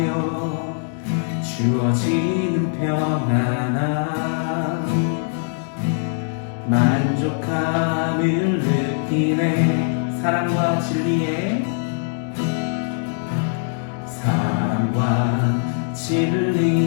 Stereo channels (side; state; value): right; silent; 64 dB below the other